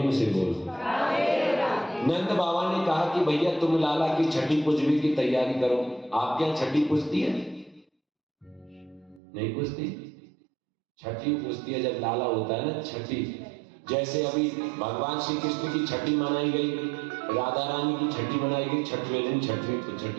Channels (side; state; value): left; drops out; at 9.2 s